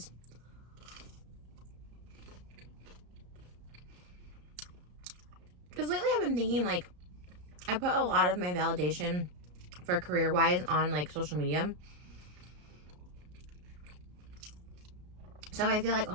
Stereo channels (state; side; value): late; left; 33 ms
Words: Because lately I've been thinking like, I put a lot of my validation for career-wise on like social media. So I feel like,